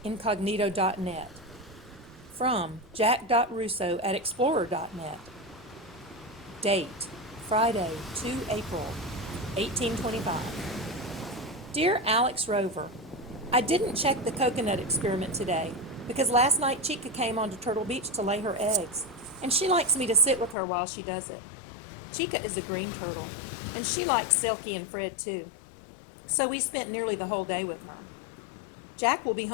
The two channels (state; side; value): drops out; right; at 20.6 s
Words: incognito.net. From jack.russo@explorer.net. Date, Friday, 2 April, 1825. Dear Alex Rover, I didn't check the coconut experiment today because last night Chica came onto Turtle Beach to lay her eggs, and she likes me to sit with her while she does it. Chica is a green turtle, and she likes Selkie and Fred too, so we spent nearly the whole day with her. Jack will be